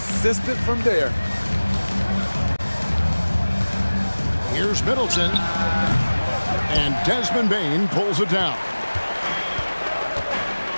from there. Here's Middleton. And Desmond Bane pulls it down.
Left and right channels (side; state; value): both; inverted; correlation -1.00